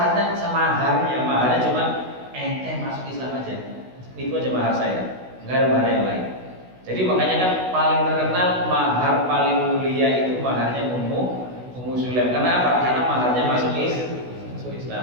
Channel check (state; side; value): late; left; 16 ms